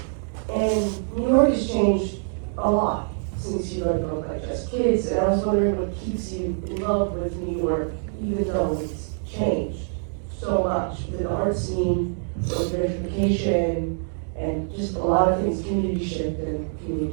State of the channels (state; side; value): silent; left; digital silence